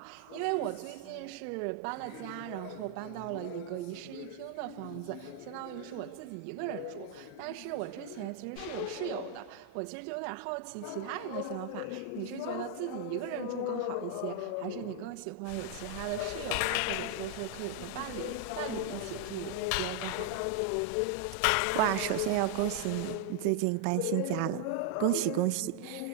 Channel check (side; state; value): both; different; correlation 0.00